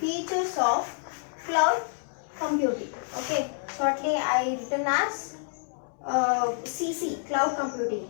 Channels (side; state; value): right; silent; digital silence